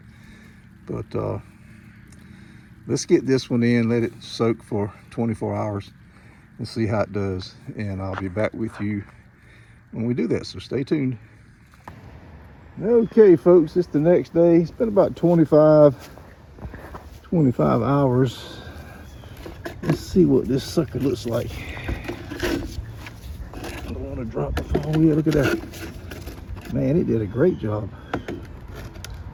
but let's get this one in, let it soak for 24 hours and see how it does. And I'll be back with you when we do that, so stay tuned. Okay folks, it's the next day. It's been about 25 hours. Let's see what this sucker looks like. I don't want to drop the phone. Yeah, look at that. Man, it did a great job.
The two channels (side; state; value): both; identical; correlation 1.00